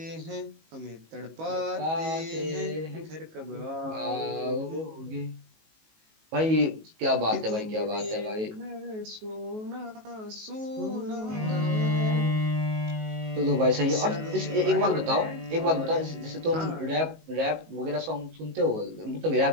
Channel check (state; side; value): late; left; 19 ms